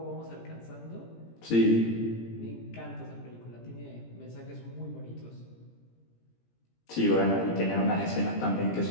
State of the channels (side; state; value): right; late; 17 ms